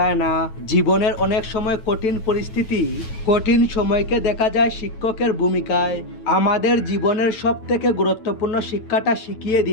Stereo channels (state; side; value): late; right; 9.2 ms